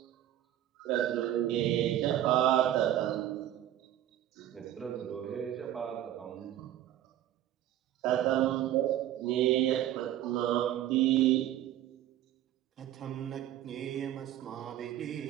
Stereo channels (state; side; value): quieter; left; 12.5 dB